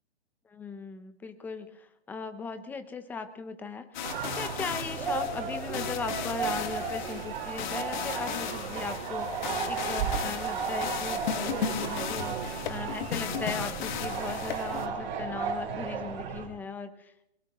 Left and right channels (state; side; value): normal; both; correlation 0.22